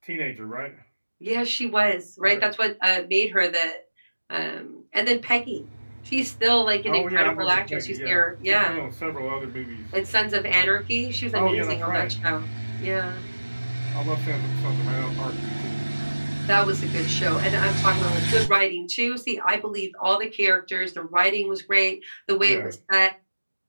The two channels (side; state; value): both; inverted; correlation -1.00